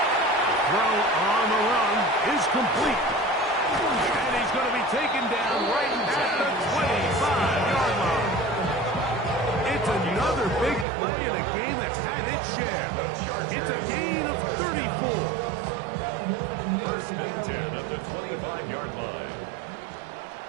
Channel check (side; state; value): left; drops out; at 10.9 s